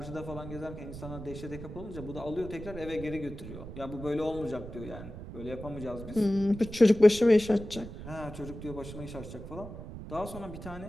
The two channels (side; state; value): right; noise; rumble, 11 dB below the sound